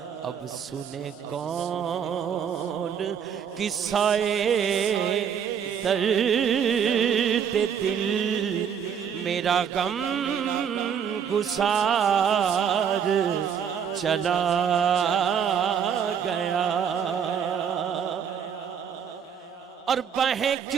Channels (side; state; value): left; quieter; 7.8 dB